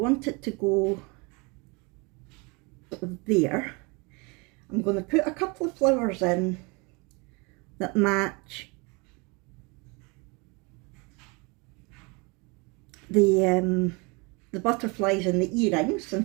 it to go there. I'm going to put a couple of flowers in that match the butterflies and the earrings,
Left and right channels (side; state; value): left; quieter; 29.2 dB